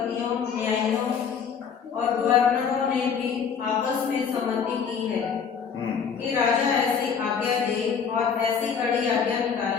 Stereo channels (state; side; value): quieter; right; 6.7 dB